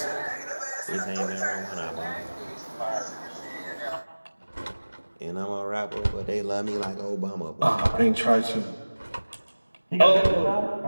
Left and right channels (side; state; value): both; inverted; correlation -1.00